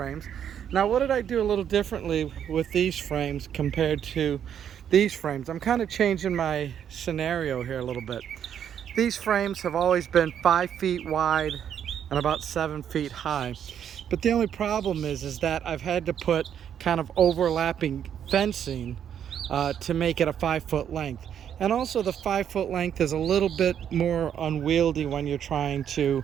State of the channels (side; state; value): left; quieter; 9.0 dB